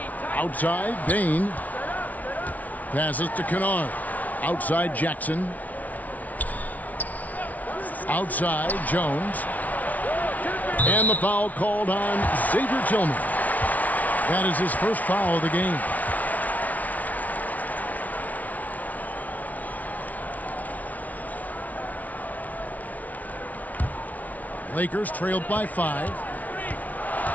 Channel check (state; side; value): late; right; 0.073 ms